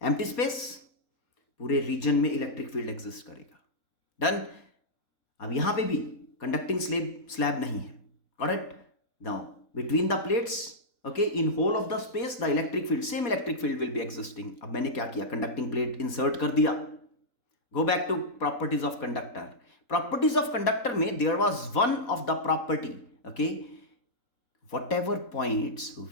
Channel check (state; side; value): late; right; 3.9 ms